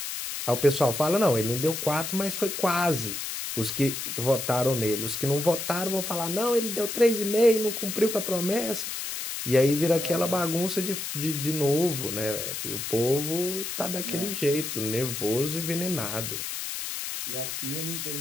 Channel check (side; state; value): left; noise; hiss, 5 dB below the sound